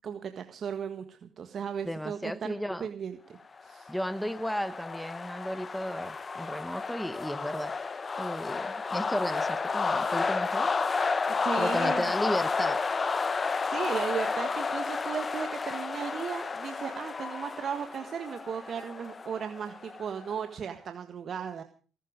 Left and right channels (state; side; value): normal; both; correlation 0.88